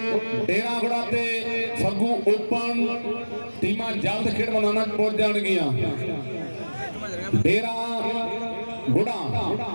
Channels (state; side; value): inverted; both; correlation -1.00